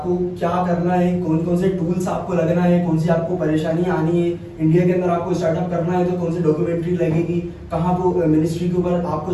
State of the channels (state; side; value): identical; both; correlation 1.00